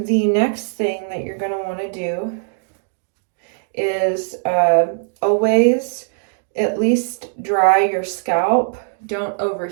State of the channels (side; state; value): left; silent; digital silence